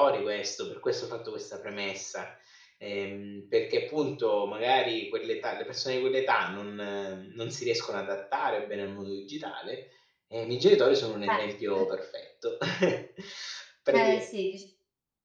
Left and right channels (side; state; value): both; identical; correlation 1.00